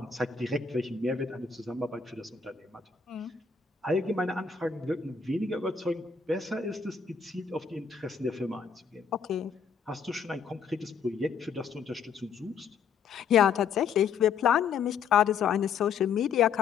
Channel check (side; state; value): right; quieter; 6.4 dB